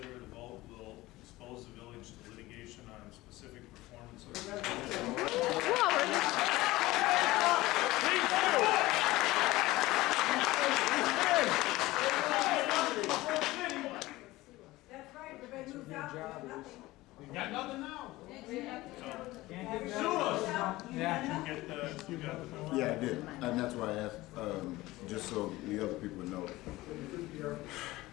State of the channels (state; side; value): quieter; right; 18.7 dB